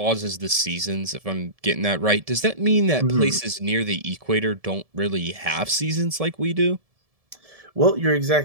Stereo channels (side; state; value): left; late; 1.7 ms